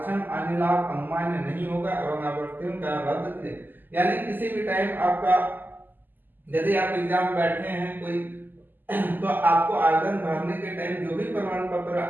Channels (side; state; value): left; late; 0.090 ms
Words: अन्य लाभ अनुमान्य नहीं होगा एवं अभ्यर्थियों का रद्द किया। यानी किसी भी टाइम आपका, यदि आप एग्जाम बैठे हैं कोई, तो आपको आवेदन भरने के टाइम जो भी प्रमाण पत्र